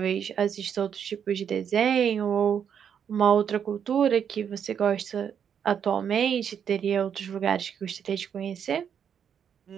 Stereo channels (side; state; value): left; quieter; 8.0 dB